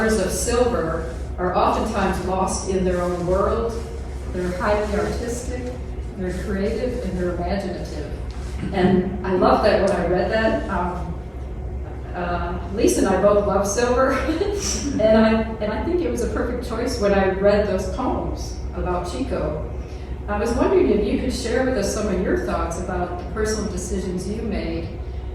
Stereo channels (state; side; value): identical; both; correlation 1.00